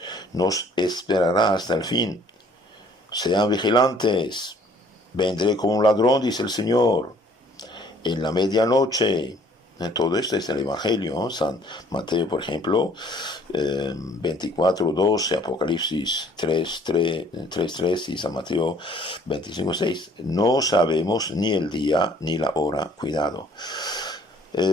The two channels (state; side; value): normal; both; correlation 0.58